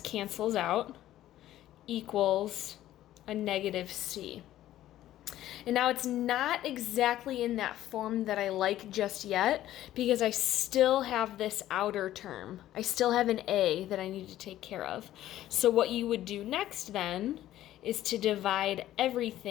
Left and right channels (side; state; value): right; quieter; 13.5 dB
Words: out, equals a negative c. And now it's not exactly in that form that I like just yet because I still have this outer term. I still have an a that I need to take care of. So what you would do next then is to divide